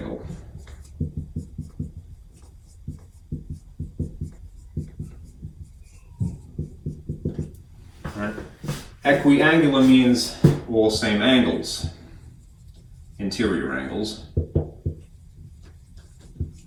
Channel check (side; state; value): both; identical; correlation 1.00